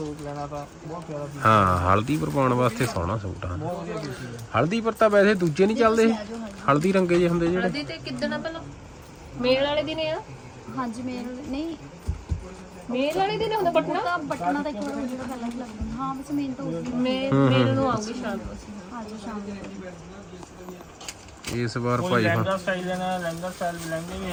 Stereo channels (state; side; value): identical; both; correlation 1.00